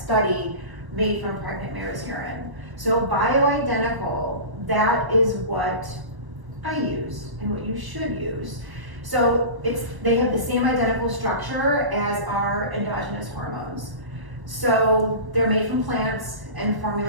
made from pregnant mare's urine. So bioidentical, that is what I use and what you should use. So they have the same identical structure as our endogenous hormones. So they're made from plants and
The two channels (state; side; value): late; left; 1.1 ms